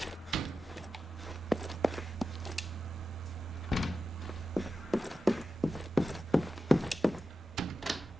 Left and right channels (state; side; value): normal; both; correlation 0.92